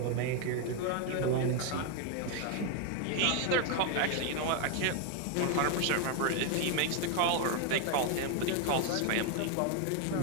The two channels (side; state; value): both; different; correlation 0.01